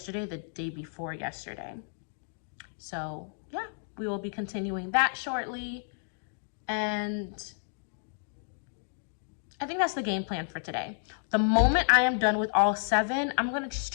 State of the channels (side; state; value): right; silent; digital silence